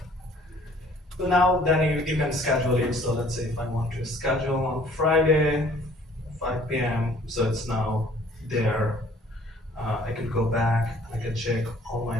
now then you can schedule it. So let's say if I want to schedule on Friday, 5 p.m. So it's now there. I can go back. I can check all my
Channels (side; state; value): both; normal; correlation 0.56